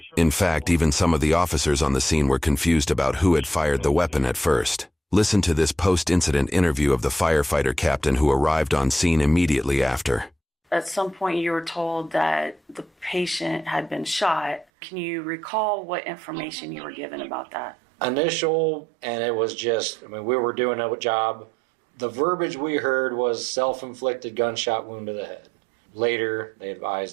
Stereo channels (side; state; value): left; drops out; at 14.7 s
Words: In fact, even some of the officers on the scene were confused about who had fired the weapon at first. Listen to this post-incident interview of the firefighter captain who arrived on scene immediately after. at some point you were told that the patient had been shot. Can you recall what information you were given about that? Initial, and it was just, we were doing a job. The verbiage we heard was self-inflicted gunshot wound to the head. Later, they